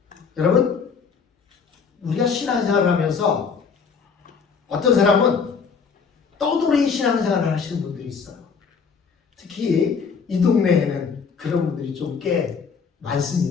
여러분, 우리가 신앙생활을 하면서 어떤 사람은 떠돌이 신앙생활을 하시는 분들이 있어요. 특히 이 동네에는 그런 분들이 좀 꽤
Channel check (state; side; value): quieter; right; 5.8 dB